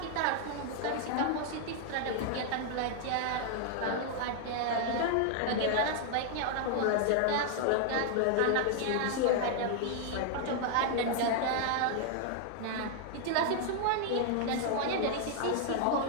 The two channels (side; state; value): both; different; correlation 0.00